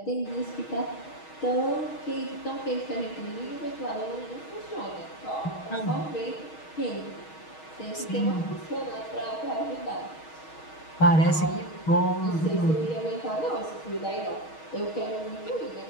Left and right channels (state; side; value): late; right; 6.3 ms